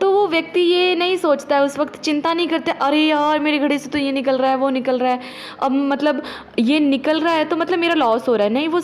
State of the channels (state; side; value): identical; both; correlation 1.00